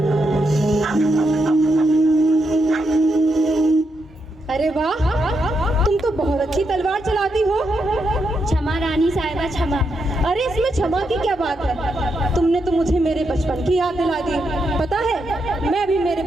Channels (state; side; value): normal; both; correlation 0.82